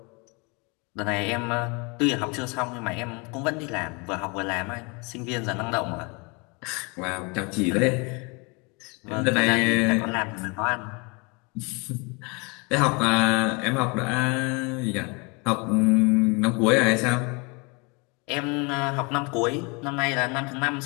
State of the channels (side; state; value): right; quieter; 29.9 dB